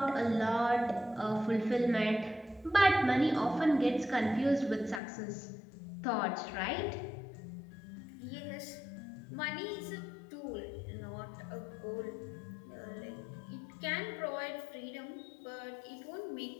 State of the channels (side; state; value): right; drops out; at 5.0 s